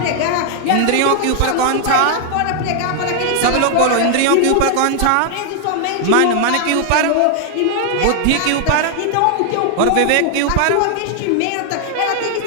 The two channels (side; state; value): both; different; correlation 0.00